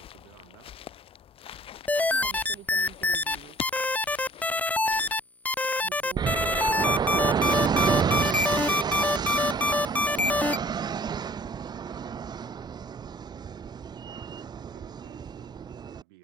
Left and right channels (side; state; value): both; normal; correlation 0.54